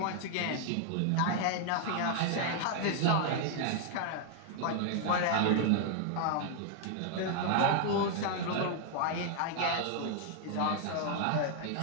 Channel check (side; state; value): both; different; correlation 0.00